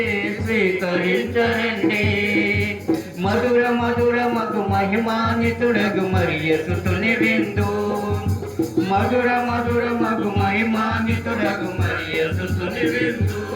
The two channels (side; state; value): both; identical; correlation 1.00